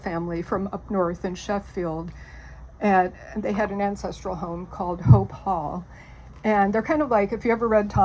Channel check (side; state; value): both; identical; correlation 1.00